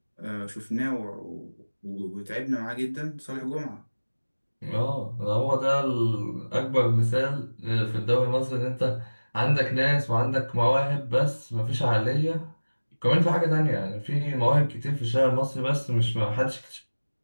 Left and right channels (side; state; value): both; inverted; correlation -1.00